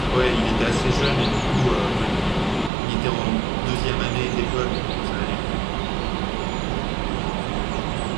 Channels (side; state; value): left; drops out; at 2.7 s